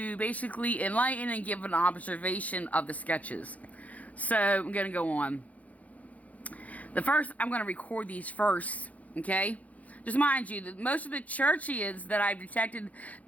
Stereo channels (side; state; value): right; late; 0.070 ms